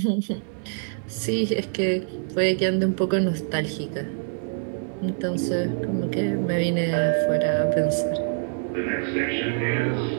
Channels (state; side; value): silent; left; digital silence